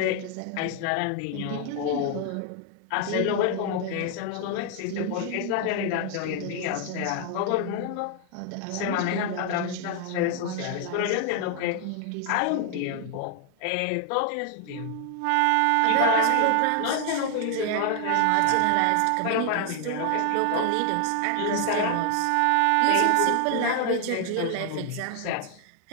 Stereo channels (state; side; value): different; both; correlation 0.00